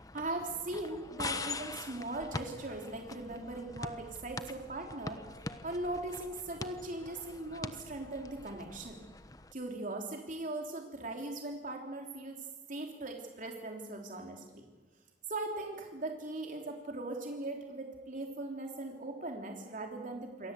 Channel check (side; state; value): both; normal; correlation 0.21